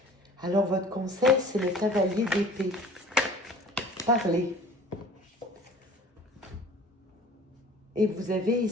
Alors, votre conseil, c'est le cavalier d'épée. Parlez. Et vous avez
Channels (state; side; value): normal; both; correlation 0.47